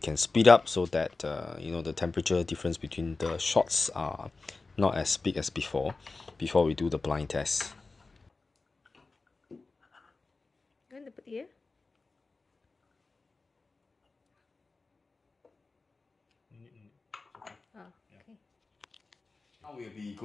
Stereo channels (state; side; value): quieter; right; 3.8 dB